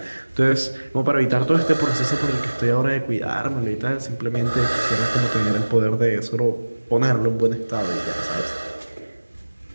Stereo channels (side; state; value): both; inverted; correlation -1.00